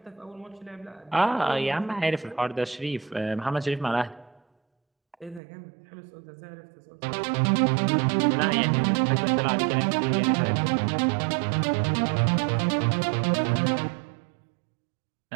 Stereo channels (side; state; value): left; drops out; at 5.4 s